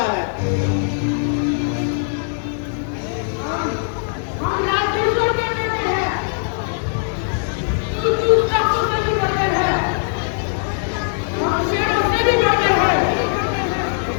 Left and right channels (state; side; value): silent; right; digital silence